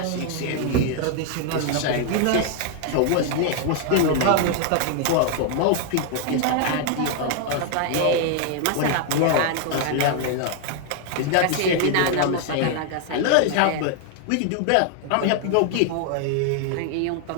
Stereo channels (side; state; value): both; different; correlation 0.00